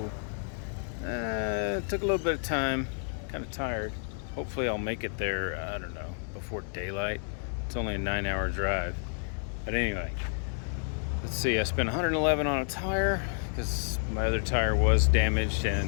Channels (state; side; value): silent; right; 56 dB below the other